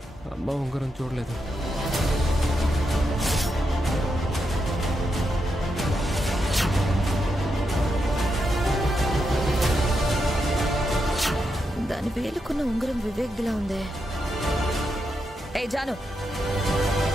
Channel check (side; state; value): both; normal; correlation 0.84